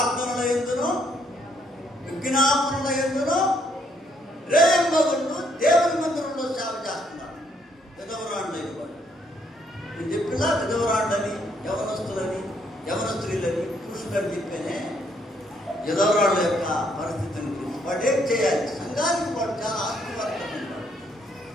యందును విజ్ఞాపనల యందును రేయింబగులు దేవుని మందిరంలో సేవ చేస్తున్నారు. విధవరాండని వాడు నేను చెప్పినా విధవరాండని, యవనస్తులని, యవన స్త్రీలని, పురుషులని చెప్పేనే విధవరాళ్ళ యొక్క పరిస్థితిని గురించి వాడు ఏం చేయాలి? సంఘానికి వాడు చాలా ఆస్తివర్గం ఉంటాడు.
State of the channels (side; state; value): both; normal; correlation 0.71